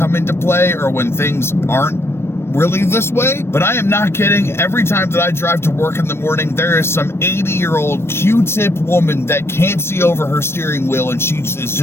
into play or when things aren't really this way, but I am not kidding. Every time that I drive to work in the morning, there is some 80-year-old Q-tip woman that can't see over her steering wheel, and she is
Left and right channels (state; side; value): late; right; 0.12 ms